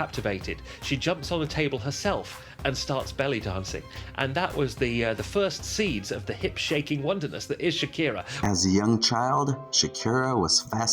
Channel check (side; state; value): both; identical; correlation 1.00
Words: She jumps on a table herself and starts belly dancing. And that was the first seeds of the hip-shaking wonderness that is Shakira. As a young child, Shakira was